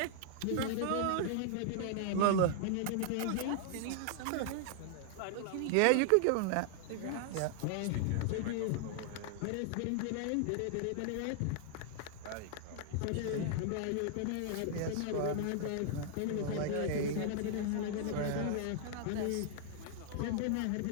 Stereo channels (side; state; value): both; different; correlation -0.01